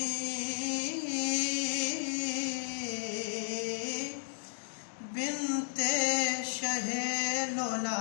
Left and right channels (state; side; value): silent; right; digital silence